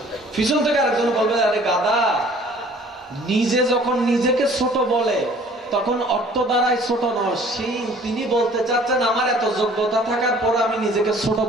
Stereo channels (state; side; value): normal; both; correlation 0.53